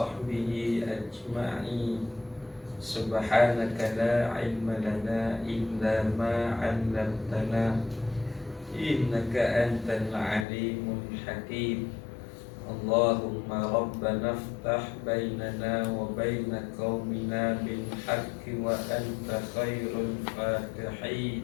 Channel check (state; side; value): drops out; right; at 10.5 s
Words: ajma'in. Subhanaka la ilma lana illa ma 'allamtana innaka antal alimul hakim. Allahumma rabbana iftah bainana wa baina qaumina bil haqqi wa anta khairul fatihin.